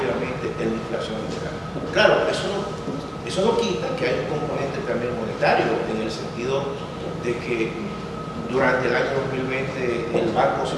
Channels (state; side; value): identical; both; correlation 1.00